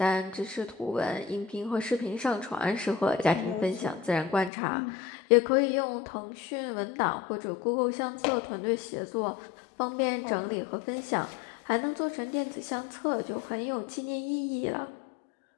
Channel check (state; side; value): drops out; right; at 4.5 s